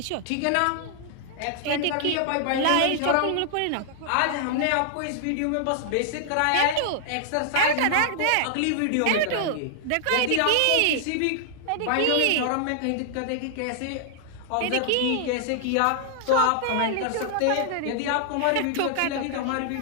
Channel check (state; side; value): different; both; correlation -0.01